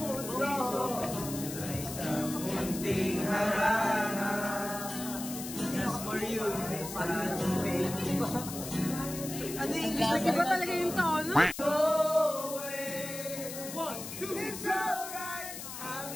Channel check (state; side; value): noise; left; hiss, 9 dB below the sound